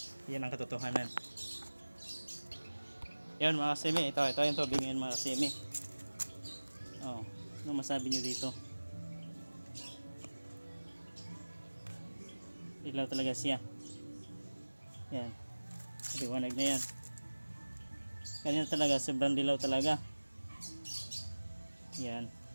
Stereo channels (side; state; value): both; inverted; correlation -1.00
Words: Yan ang katotohanan. Yan mga kasimi, ito yung tubig ngayon mga kasimi. Oh, ano masabi nyo dito? Ilaw talaga siya. Yan, liwanag na yan. Kanina talaga, sobrang dilaw talaga. Yan.